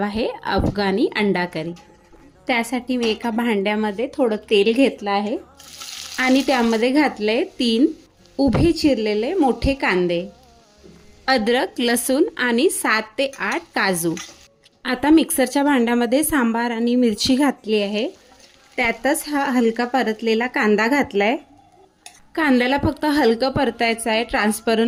आहे अफगाणी अंडा करी. त्यासाठी मी एका भांड्यामध्ये थोडं तेल घेतलं आहे आणि त्यामध्ये घातले 3 उभे चिरलेले मोठे कांदे, अद्रक, लसूण आणि 7 ते 8 काजू. आता मिक्सरच्या भांड्यामध्ये सांबार आणि मिरची घातली आहे. त्यातच हा हलका परतलेला कांदा घातलाय. कांद्याला फक्त हलकं परतायचं आहे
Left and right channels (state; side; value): identical; both; correlation 1.00